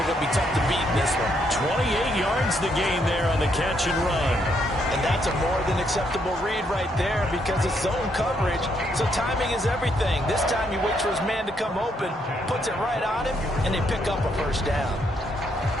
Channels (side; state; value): both; normal; correlation 0.74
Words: going to be tough to beat in this one. 28 yards the gain there on the catch and run. And that's a more than acceptable read right there because it's zone coverage, so timing is everything. This time he waits for his man to come open, puts it right on him, and they pick up a first down.